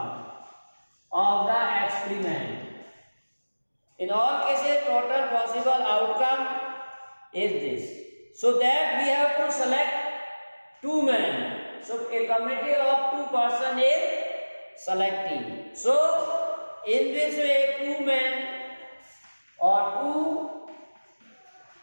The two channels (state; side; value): inverted; both; correlation -1.00